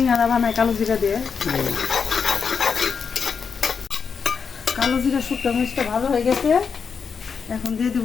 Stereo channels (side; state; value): right; quieter; 6.0 dB